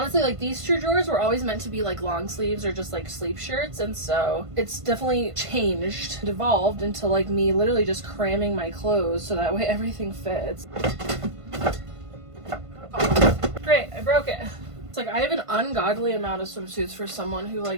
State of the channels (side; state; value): left; late; 1.5 ms